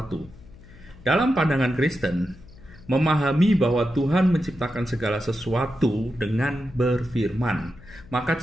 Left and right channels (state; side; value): noise; left; hum, 21 dB below the sound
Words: Dalam pandangan Kristen, memahami bahwa Tuhan menciptakan segala sesuatu dengan berfirman. Maka